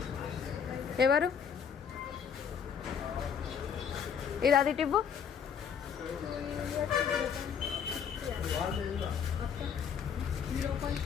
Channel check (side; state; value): right; quieter; 7.3 dB